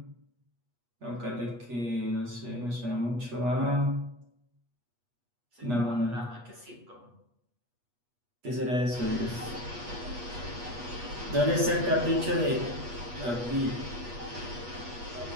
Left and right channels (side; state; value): left; late; 8.3 ms